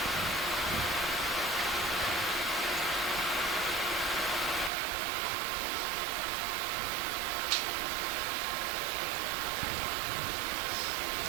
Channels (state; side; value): drops out; left; at 4.7 s